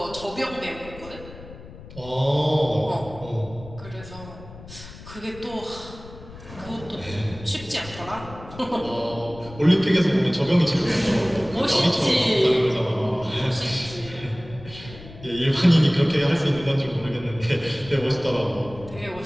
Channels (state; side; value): noise; left; rumble, 16 dB below the sound